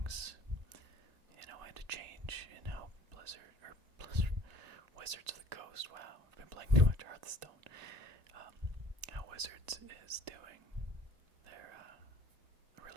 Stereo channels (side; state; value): left; late; 1.9 ms